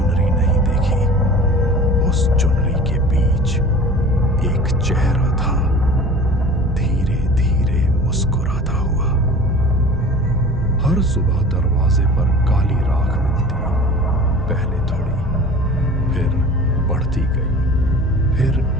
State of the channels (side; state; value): both; normal; correlation 0.41